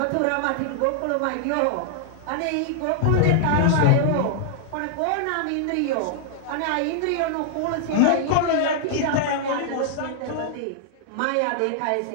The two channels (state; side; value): different; both; correlation -0.01